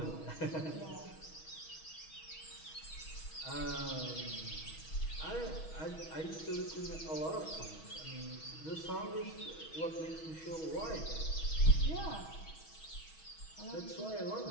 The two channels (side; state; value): right; late; 6.3 ms